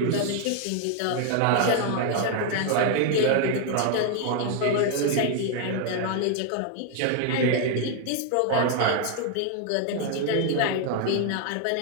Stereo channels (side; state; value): both; different; correlation 0.00